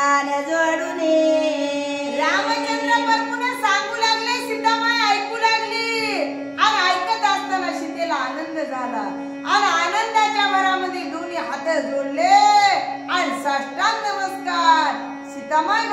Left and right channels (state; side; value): identical; both; correlation 1.00